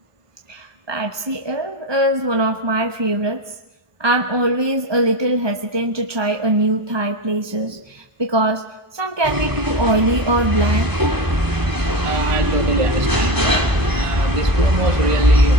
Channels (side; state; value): left; late; 1.2 ms